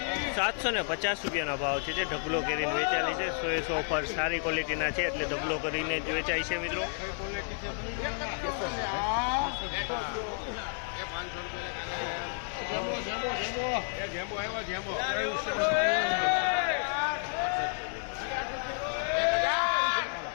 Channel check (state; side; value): silent; right; 57 dB below the other